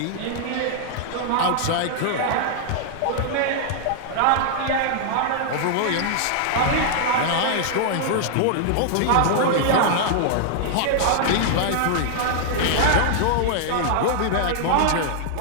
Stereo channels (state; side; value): different; both; correlation -0.01